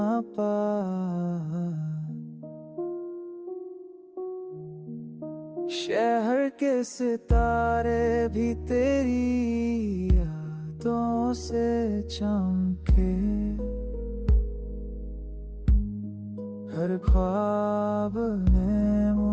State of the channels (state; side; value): identical; both; correlation 1.00